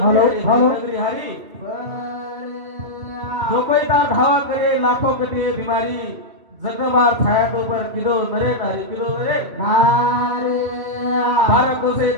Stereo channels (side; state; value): left; late; 2.4 ms